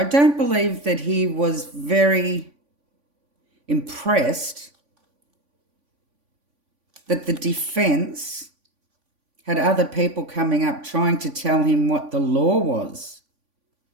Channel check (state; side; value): late; left; 3.5 ms